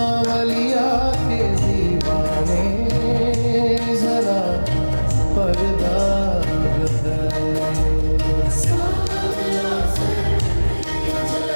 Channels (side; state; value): both; inverted; correlation -1.00